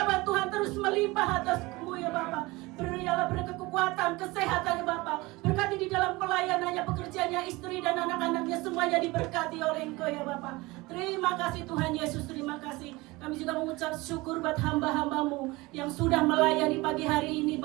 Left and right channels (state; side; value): quieter; left; 22.1 dB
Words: Tuhan terus melimpah atasmu ya Bapak. Berilah kekuatan, kesehatan ya Bapak. Berkati di dalam pelayanannya, pekerjaannya, istri dan anak-anaknya semuanya diberkati oleh Engkau ya Bapak. Terima kasih Tuhan Yesus, terima kasih. Kami juga mengucap syukur buat hamba-hamba-Mu yang sudah melayani pagi hari ini